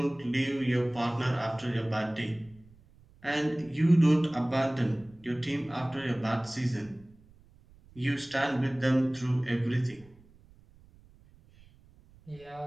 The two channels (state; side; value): noise; right; rumble, 26 dB below the sound